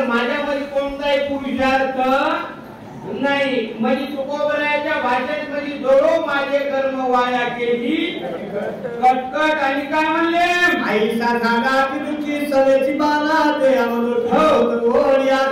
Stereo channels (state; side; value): identical; both; correlation 1.00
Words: माझ्यामध्ये कोणताही पुरुषार्थ नाही. म्हणजे तुकोबराच्या भाषेत म्हणजे दोडो माझे कर्म वाया केली कटकट. आणि काय म्हणले? आईसा झाला की तुझी सवेची बाला ते अमृत हो